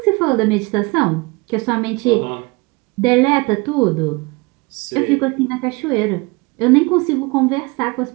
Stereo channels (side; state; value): left; quieter; 26.4 dB